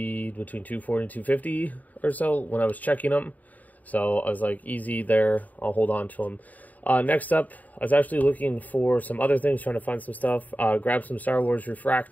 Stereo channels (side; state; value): right; late; 0.076 ms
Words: between 240 and 250 or so when I was checking them. So I was like, easy there. I'll hold on to them. Next up, I was actually looking for some other things, trying to find some stuff. Grab some Star Wars